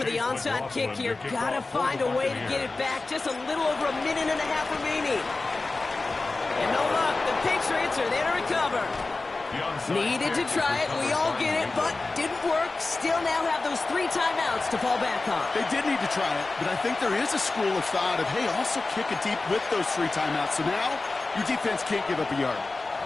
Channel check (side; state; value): right; quieter; 3.5 dB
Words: the onside kick here. Gotta find a way to get it back. Just a little over a minute and a half remaining. And no luck. The Patriots are there to recover. Needed to try it. We all get it, but didn't work. Still now have those 3 timeouts to fall back on. They did need to try it, but I think there is a school of thought of, hey, also kick it deep with those 3 timeouts. So now your defense can't give up a yard.